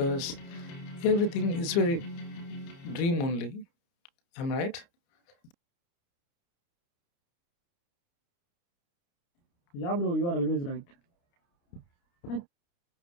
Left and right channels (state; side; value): late; right; 30 ms